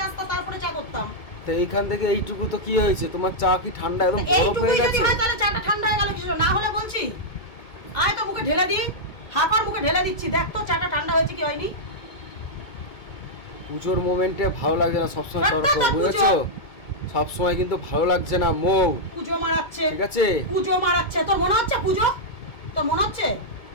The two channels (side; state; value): right; late; 2.2 ms